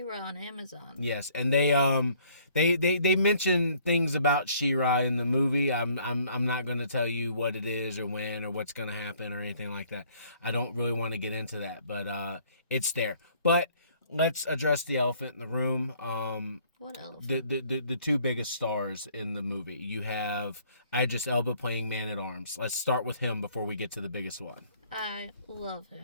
on Amazon. Yes, and they mention things about She-Ra in the movie. I'm not going to tell you what it is or when or what's going to happen or anything like that. I don't really want to get into that, but it's there. But let's address the elephant in the room. What elephant? The two biggest stars in the movie. You have Idris Elba playing Man-at-Arms. Let's start with him before we get to the biggest one. I love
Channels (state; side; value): inverted; both; correlation -0.60